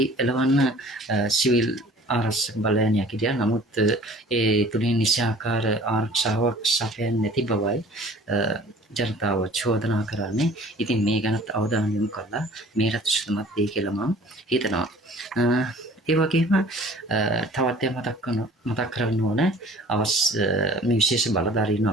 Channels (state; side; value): normal; both; correlation 0.49